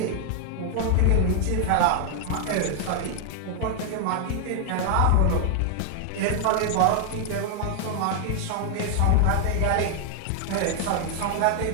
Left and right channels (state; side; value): different; both; correlation 0.00